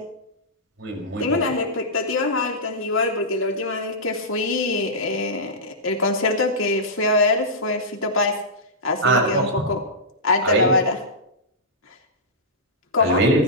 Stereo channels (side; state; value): both; normal; correlation -0.14